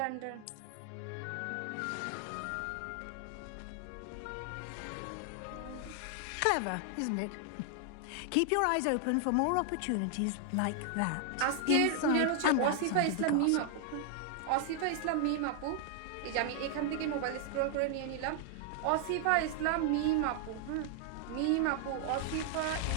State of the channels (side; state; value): both; different; correlation 0.00